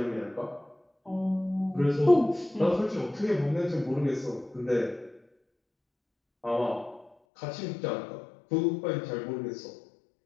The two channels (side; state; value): right; drops out; at 7.1 s